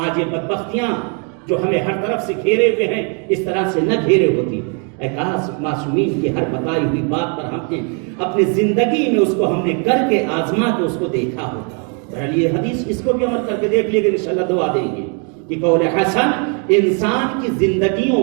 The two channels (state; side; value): quieter; left; 38.4 dB